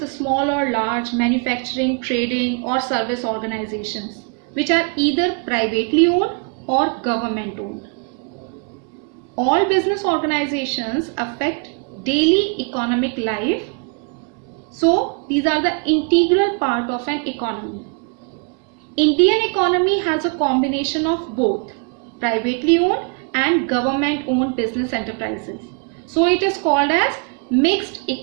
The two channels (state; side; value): quieter; left; 38.6 dB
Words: small or large manufacturing, trading or service organizations which are either privately owned or government owned. All business organizations affect daily economic life. So these are the integral part of an economy. Indian economy has a combination of both privately owned and government owned business enterprises. So it is called as mixed